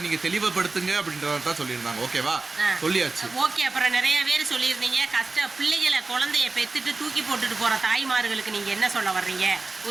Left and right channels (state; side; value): quieter; left; 3.6 dB